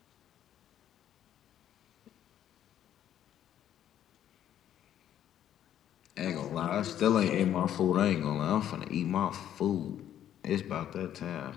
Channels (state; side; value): quieter; right; 10.8 dB